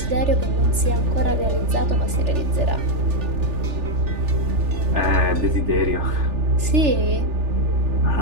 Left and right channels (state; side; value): late; left; 3.4 ms